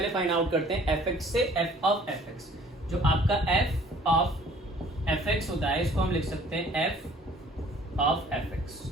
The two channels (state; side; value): normal; both; correlation 0.54